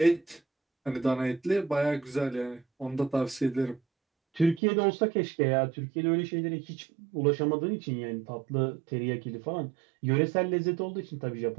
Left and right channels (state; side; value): drops out; left; at 4.6 s